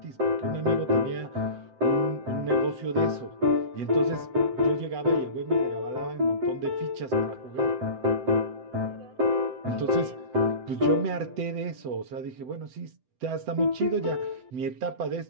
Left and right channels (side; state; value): left; late; 7.8 ms